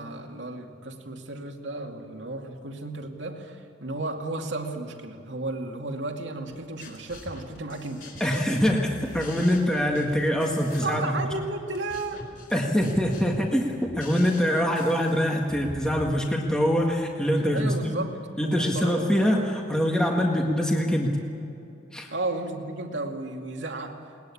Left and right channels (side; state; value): both; normal; correlation 0.75